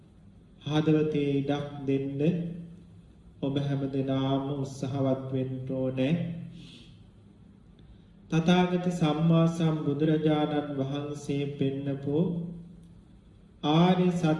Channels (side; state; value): both; identical; correlation 1.00